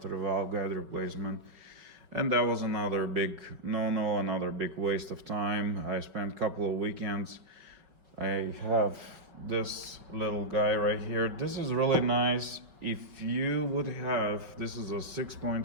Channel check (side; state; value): left; late; 5.1 ms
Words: the valve guide replacement. And that was another big no-no, another big waste of time. I spent a couple of weekends. I have this little guy right here. This is really nice. If you would have, this is a